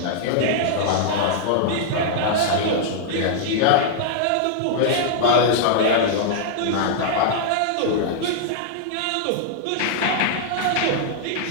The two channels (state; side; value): different; both; correlation -0.01